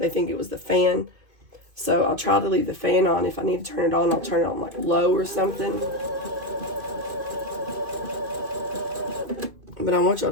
think it was the fan. So I'll try to leave the fan on. If I need to turn it on, I'll turn it on like low or something. But I want y'all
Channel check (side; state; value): left; late; 2.5 ms